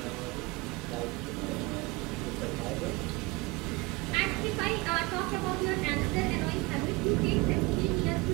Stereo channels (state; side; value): quieter; left; 24.1 dB